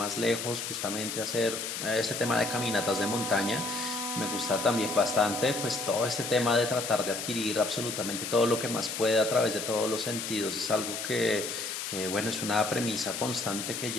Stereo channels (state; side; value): noise; left; hiss, 5 dB below the sound